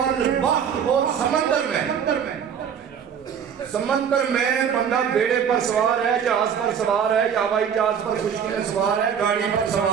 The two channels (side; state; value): left; quieter; 7.8 dB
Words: اور سمندر میں بندہ بیڑے پر سوار ہے، جہاز پر سوار ہے، یا ہوائی جہاز پر خشکی میں سوار ہے، گاڑی پر